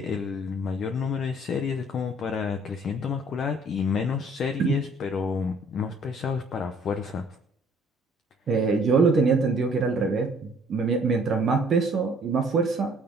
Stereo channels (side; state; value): both; normal; correlation 0.58